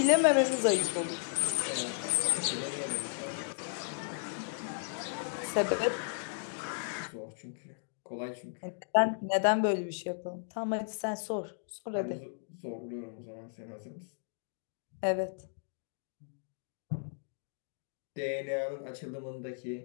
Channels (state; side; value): silent; right; digital silence